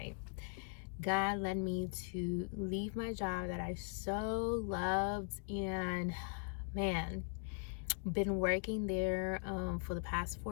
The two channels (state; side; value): silent; right; 51 dB below the other